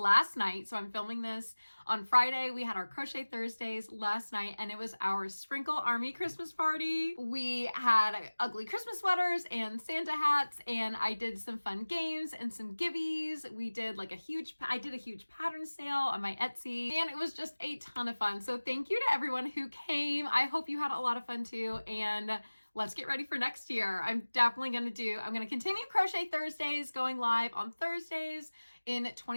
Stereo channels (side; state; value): both; inverted; correlation -1.00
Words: night, so I'm filming this on Friday. We had our Crochet Thursdays last night and it was our Sprinkle Army Christmas party. We had ugly Christmas sweaters and Santa hats, and I did some fun games and some gibbies. We did like I did a huge pattern sale on my Etsy, and it was just a ton of fun. So thank you to everyone who came. I hope you had a lot of fun too, and let's get ready for next year. I'm going to continue Crochet Thursdays, going live on Thursdays in